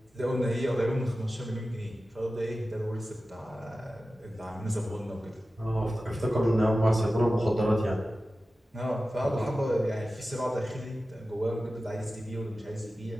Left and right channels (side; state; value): both; normal; correlation 0.94